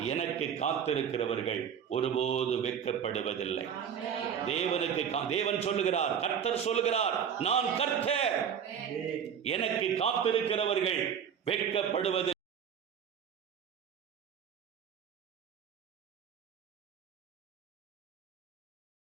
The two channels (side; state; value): left; quieter; 8.0 dB